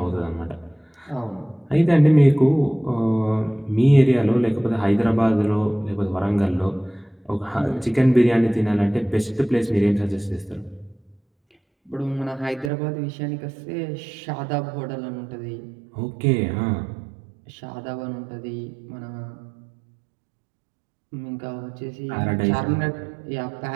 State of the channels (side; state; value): left; drops out; at 12.7 s